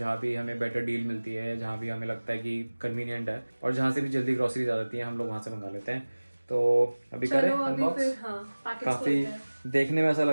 भी हमें बेटर डील मिलती है, जहाँ भी हमें लगता है कि कन्वीनियंट है, और जहाँ से भी जल्दी ग्रोसरीज आ जाती है हम लोग वहाँ से मंगा लेते हैं। तो अभी करें अनबॉक्स। काफी देखने में ऐसा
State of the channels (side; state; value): both; inverted; correlation -1.00